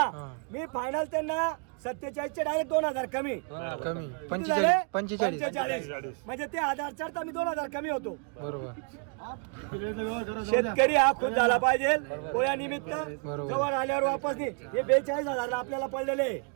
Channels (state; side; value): quieter; left; 37.6 dB